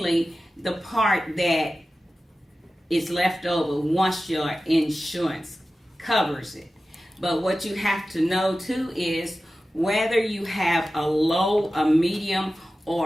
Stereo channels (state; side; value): normal; both; correlation 0.95